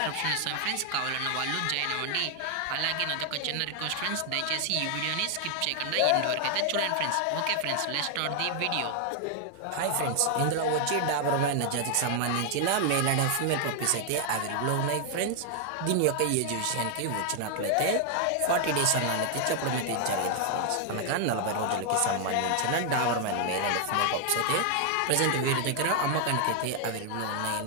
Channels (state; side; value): different; both; correlation 0.00